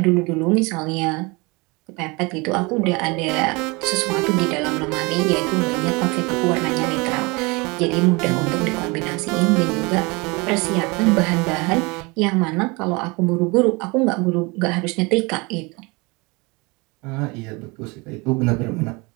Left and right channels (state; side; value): quieter; left; 26.7 dB